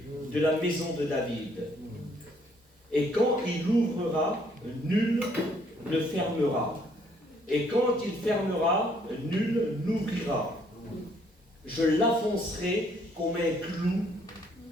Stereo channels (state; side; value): normal; both; correlation 0.66